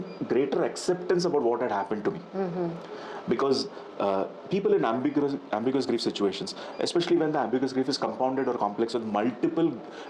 greater acceptance about what had happened to me. Because people in ambiguous grief situations, especially when the ambiguous grief is compounded or complex with multiple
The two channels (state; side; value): identical; both; correlation 1.00